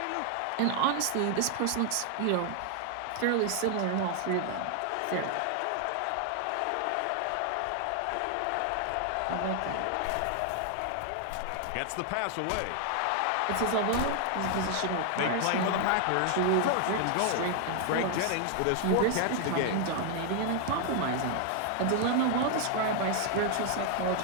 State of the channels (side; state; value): both; different; correlation 0.00